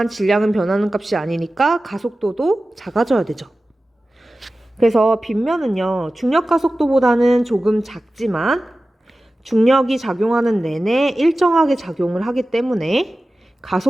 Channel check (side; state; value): both; normal; correlation 0.95